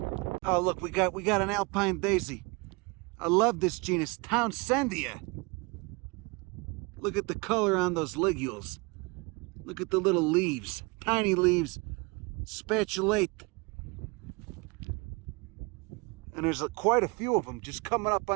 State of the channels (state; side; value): quieter; left; 28.0 dB